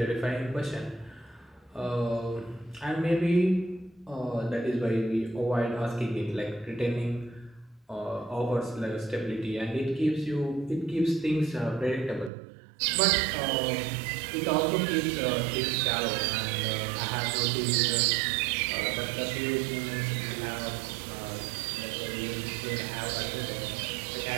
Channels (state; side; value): drops out; left; at 12.3 s